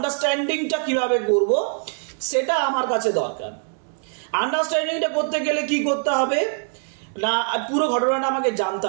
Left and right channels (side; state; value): left; silent; 58 dB below the other